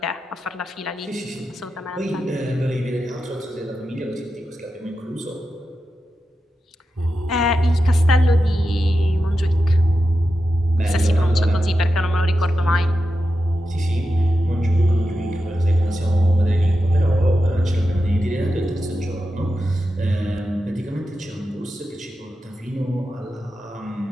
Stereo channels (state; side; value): normal; both; correlation 0.90